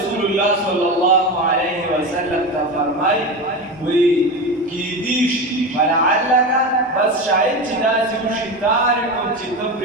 الله صلی الله علیه وسلم ته فرمایي وی کی دیش ولعلک بس شاید چې دا چې وشي تارکو چې ته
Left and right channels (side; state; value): both; normal; correlation 0.22